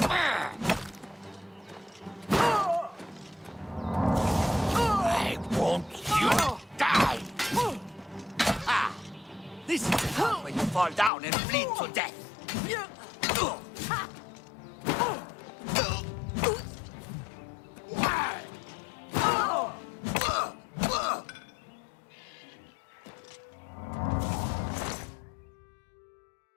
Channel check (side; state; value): right; drops out; at 11.1 s